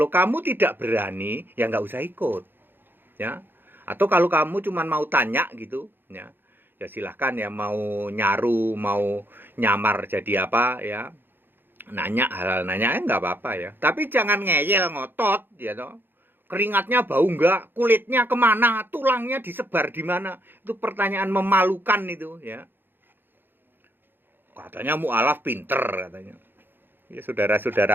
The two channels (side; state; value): left; late; 0.098 ms